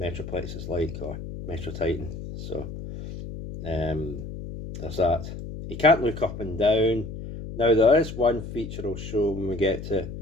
is like, or Metrotitan. So there's that. He can't look up and down. Now there is one feature I'll show when we get to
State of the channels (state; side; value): noise; left; hum, 9 dB below the sound